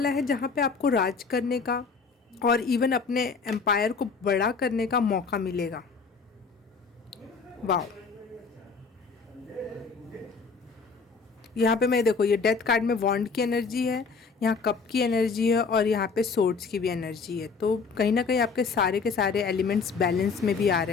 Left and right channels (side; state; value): right; quieter; 4.9 dB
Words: है जहाँ पे आपको राज करने का और इवन अपने एम्पायर को बड़ा करने का मौका मिलेगा। वाह, यहाँ पे मैं देखो, ये डेथ कार्ड में वॉन्ड की एनर्जी है, यहाँ कप की एनर्जी है और यहाँ पे सोर्ड्स की भी एनर्जी है। तो कहीं ना कहीं आपके सारे के सारे एलिमेंट्स बैलेंस में भी आ